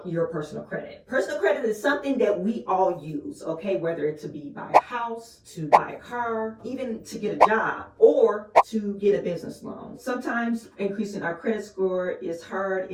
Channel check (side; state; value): both; identical; correlation 1.00